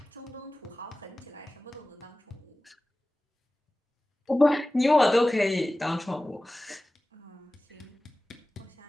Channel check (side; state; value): both; normal; correlation 0.97